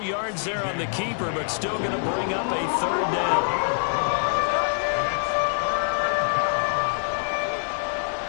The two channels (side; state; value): right; silent; digital silence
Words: yards there on the keeper, but still going to bring up a third down.